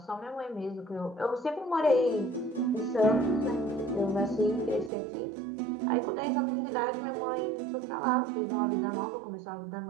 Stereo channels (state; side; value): drops out; left; at 4.9 s